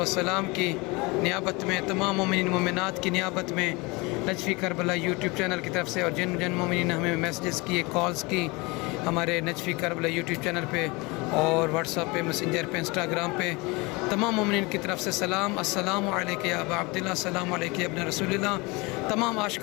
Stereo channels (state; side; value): quieter; right; 25.7 dB